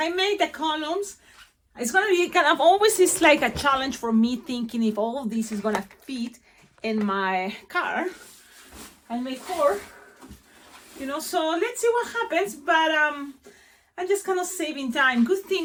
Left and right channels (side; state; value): both; identical; correlation 1.00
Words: made the columns. It's gonna be kind of always is like a challenge for me thinking if all of this is gonna fit in my car and make four, you know. So let's see what happens. But I'm just kind of saving time. Good